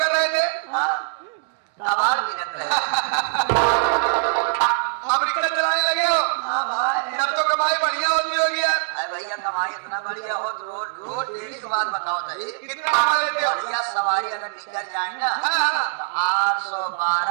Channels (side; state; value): left; silent; digital silence